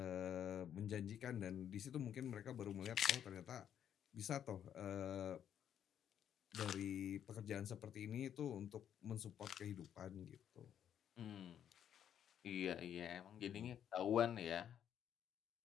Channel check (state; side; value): quieter; right; 9.5 dB